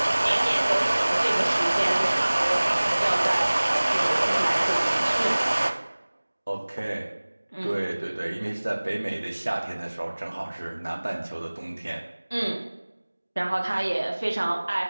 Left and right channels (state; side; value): inverted; both; correlation -1.00